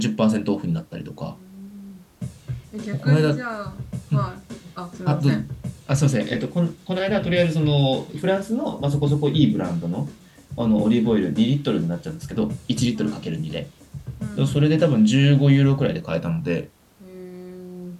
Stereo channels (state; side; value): identical; both; correlation 1.00